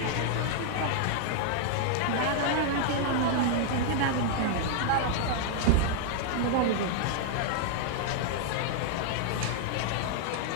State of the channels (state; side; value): different; both; correlation -0.01